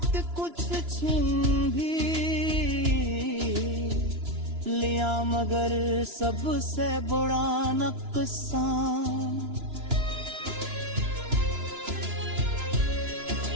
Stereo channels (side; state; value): left; late; 2.9 ms